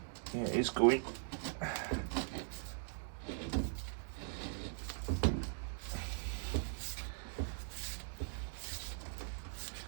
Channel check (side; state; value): left; silent; 50 dB below the other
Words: yeah, it is going.